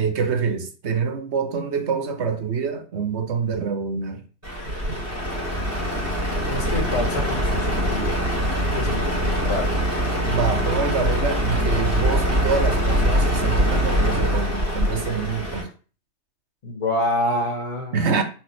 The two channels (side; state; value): left; late; 3.2 ms